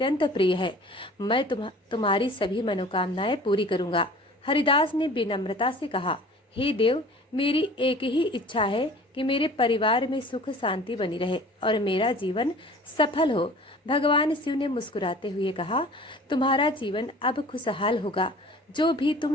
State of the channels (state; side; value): normal; both; correlation 0.46